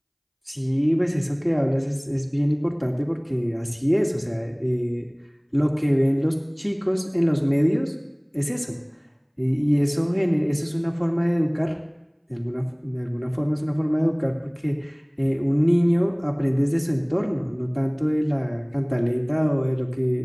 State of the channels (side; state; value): both; identical; correlation 1.00